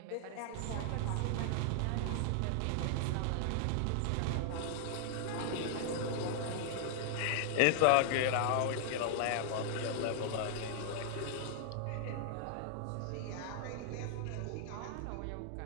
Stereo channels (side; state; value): both; different; correlation 0.00